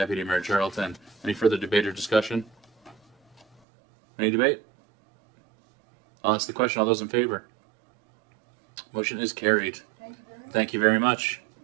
Mayor Charlton. Any further debate or discussion? Any debate? I'll ask the question. All those in favor? Motion is carried. Thank you very much.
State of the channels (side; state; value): left; drops out; at 3.5 s